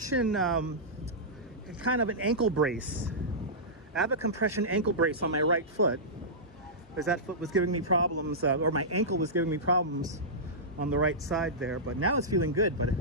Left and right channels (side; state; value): both; normal; correlation -0.15